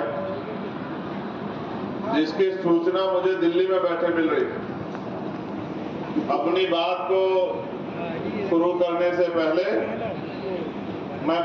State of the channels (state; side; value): identical; both; correlation 1.00